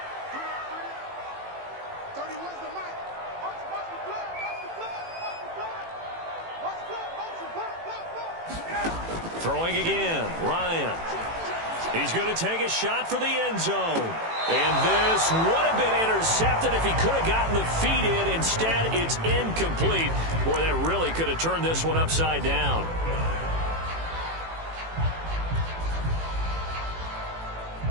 Throwing again, Ryan. He's going to take a shot for the end zone. And this would have been intercepted if he could have gotten the feet in. Instead, it's incomplete. Boy, that really could have turned this one upside down.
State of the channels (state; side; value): late; left; 18 ms